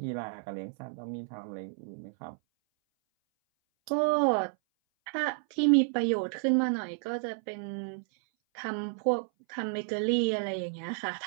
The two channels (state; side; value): silent; left; 57 dB below the other